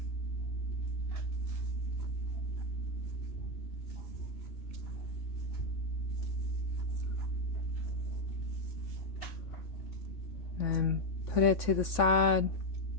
And put it to the side.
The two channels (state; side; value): late; right; 3.6 ms